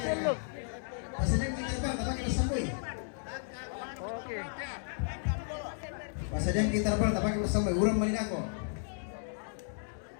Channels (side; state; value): right; silent; digital silence